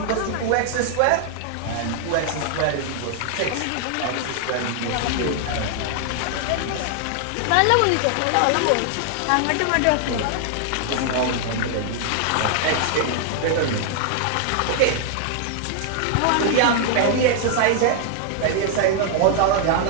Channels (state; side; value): different; both; correlation 0.00